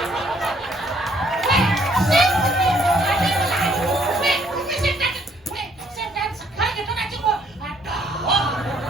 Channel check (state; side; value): normal; both; correlation 0.66